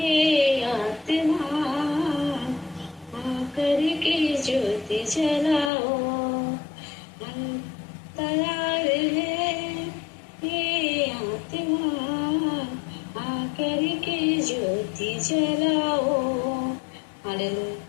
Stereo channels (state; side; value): drops out; right; at 5.7 s